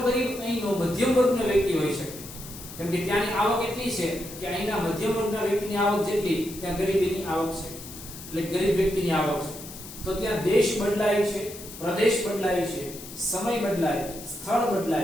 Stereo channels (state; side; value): noise; left; hiss, 14 dB below the sound